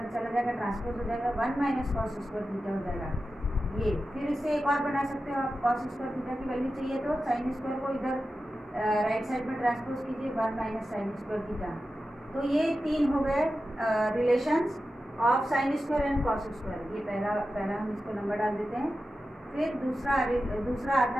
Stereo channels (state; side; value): normal; both; correlation 0.92